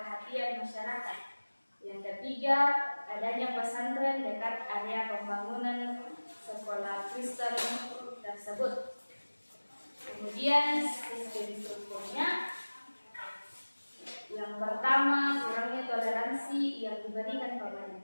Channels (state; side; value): inverted; both; correlation -1.00